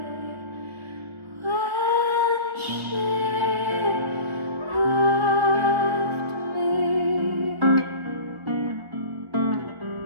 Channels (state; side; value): late; left; 1.5 ms